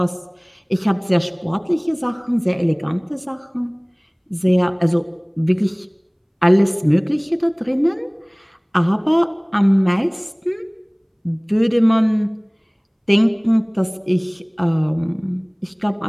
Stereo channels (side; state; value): both; identical; correlation 1.00